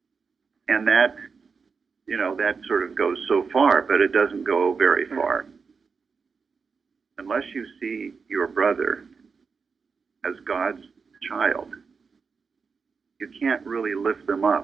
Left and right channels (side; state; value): left; quieter; 5.2 dB